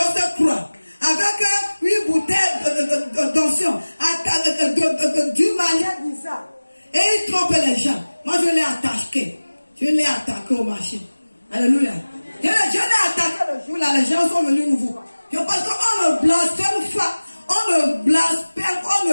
croix, avec une bouteille d'onction, d'une manière bizarre. Et ils trompent les gens. Moi, je l'ai attaqué. Je l'ai attaqué au marché. Alléluia. Je l'ai attaqué le jour là, les gens sont venus nous voir. Parce qu'on ne blasphème pas. On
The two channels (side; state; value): both; inverted; correlation -1.00